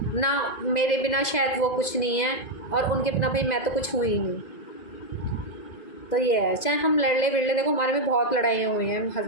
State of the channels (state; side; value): late; right; 2.0 ms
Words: ना, मेरे बिना शायद वो कुछ नहीं है और उनके बिना भाई मैं तो कुछ हुई ही नहीं। तो ये है, चाहे हम लड़ ले बिड़ ले, देखो हमारे में बहुत लड़ाइयाँ हुई हैं,